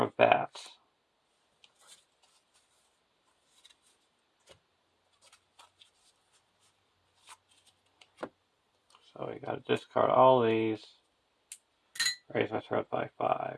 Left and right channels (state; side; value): identical; both; correlation 1.00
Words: of bats. So we got to discard all these. Raise our threat by 5.